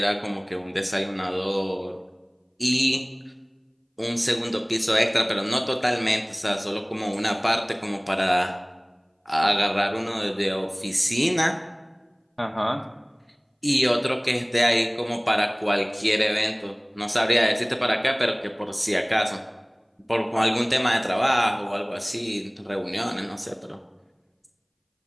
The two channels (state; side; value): identical; both; correlation 1.00